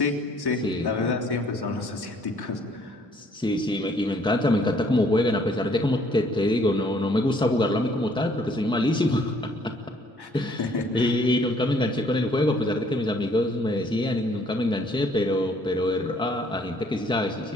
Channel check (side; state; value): both; normal; correlation 0.62